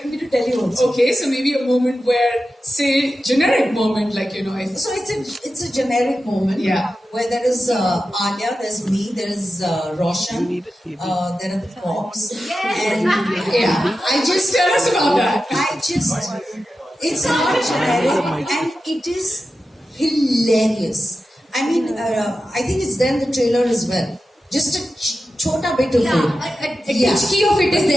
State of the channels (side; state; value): both; normal; correlation 0.92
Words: me to tell you also. Okay, so maybe a moment where, say, generic moment, like, you know, if... So it's a generic moment. Yeah. Where there is Alia, there's me, there is Roshan, there are the cops. And yeah, I just... Tell us about that. It's not generic and it is hilarious. I mean, I think it's there in the trailer as well. Just a chota bit of it. A titchki of it is